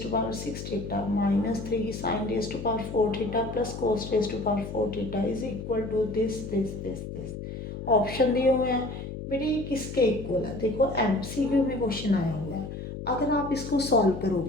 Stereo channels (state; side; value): noise; left; hum, 8 dB below the sound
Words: to power 6 theta minus 3 sine raise to power 4 theta plus cos raise to power 4 theta is equal to this. Option दिए हुए हैं बेटे, ये किसके इक्वल है? देखो एमसीक्यू में क्वेश्चन आया हुआ है। अगर आप इसको सॉल्व